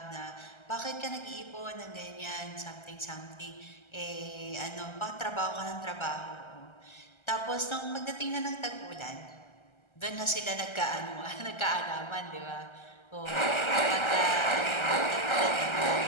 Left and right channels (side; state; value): right; late; 1.3 ms